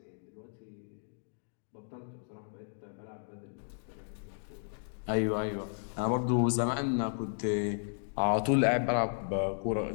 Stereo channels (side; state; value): right; silent; digital silence